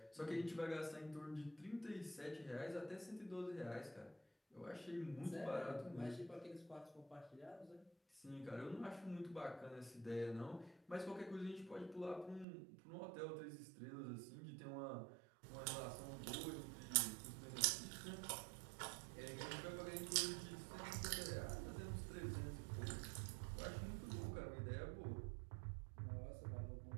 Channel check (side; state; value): left; drops out; at 12.5 s